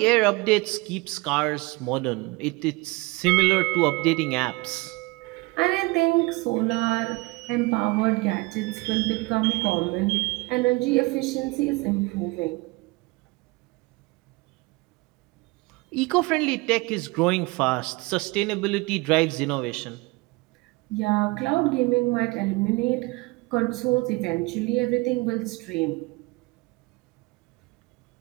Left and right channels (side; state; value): left; quieter; 23.8 dB